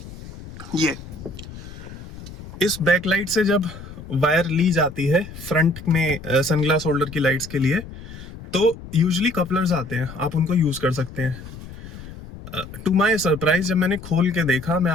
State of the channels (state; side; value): noise; left; rumble, 14 dB below the sound